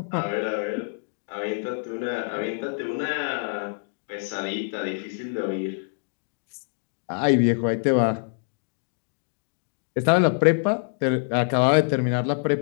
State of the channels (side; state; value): right; silent; digital silence